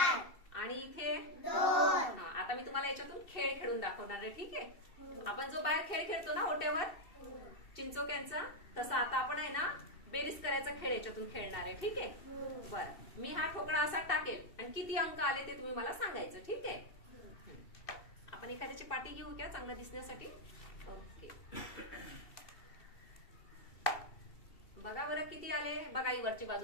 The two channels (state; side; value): late; right; 2.7 ms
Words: आणि इथे 2. आता मी तुम्हाला याच्यातून खेळ खेळून दाखवणार आहे. ठीक आहे? आपण जो बाहेर खेळ खेळतो ना ओट्यावर चिंचोक्यांचा, तसा आता आपण आहे ना बेरीज करायचा खेळ याच्यातून खेळणार आहे. ठीक आहे? बरं, मी हा ठोकळा असा टाकेल आणि किती अंक आले ते तुम्ही मला सांगायचं. ठीक आहे? आपण एखाद्याची पाटी घेऊ का चांगलं दिसण्यासाठी? ओके. बघा बरं किती आले. बघा, ही वरची